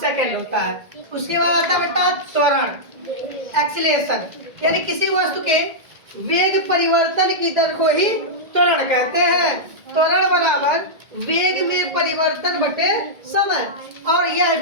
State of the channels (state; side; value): late; left; 1.8 ms